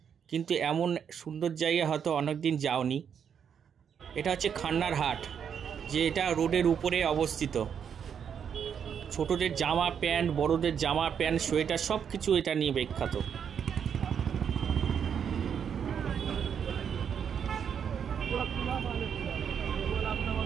কিন্তু এমন সুন্দর জায়গা হয়তো অনেক দিন যাওনি। এটা হচ্ছে খান্নারহাট, যে এটা রোডের উপরে অবস্থিত। ছোটদের জামা প্যান্ট, বড়দের জামা প্যান্ট, সোয়েটার সব কিছু এটা নিয়ে বিখ্যাত।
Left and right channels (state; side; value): quieter; left; 7.7 dB